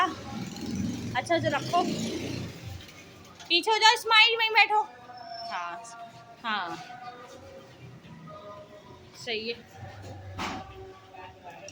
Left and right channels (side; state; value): both; identical; correlation 1.00